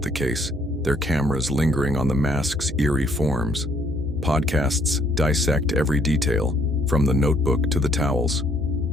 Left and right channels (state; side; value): normal; both; correlation 0.66